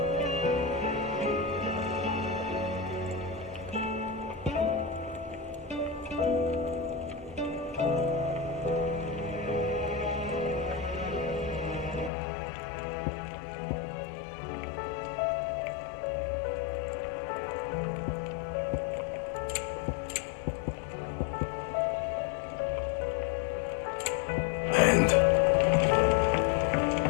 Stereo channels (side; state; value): right; drops out; at 12.1 s